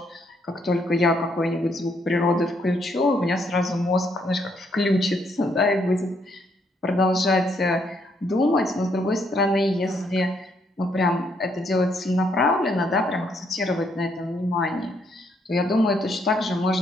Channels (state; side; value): normal; both; correlation 0.73